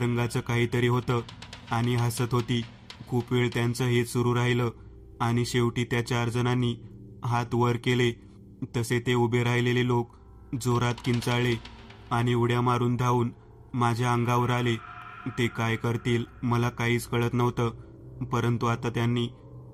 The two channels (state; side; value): identical; both; correlation 1.00